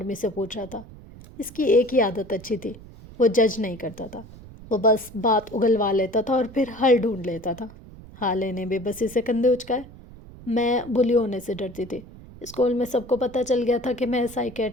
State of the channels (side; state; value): right; noise; rumble, 18 dB below the sound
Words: سے پوچھ رہا تھا۔ اس کی ایک ہی عادت اچھی تھی، وہ جج نہیں کرتا تھا، وہ بس بات اگلوا لیتا تھا اور پھر حل ڈھونڈ لیتا تھا۔ حالے نے بے بسی سے کندھے اچکائے۔ میں بلی ہونے سے ڈرتی تھی۔ اسکول میں سب کو پتہ چل گیا تھا کہ میں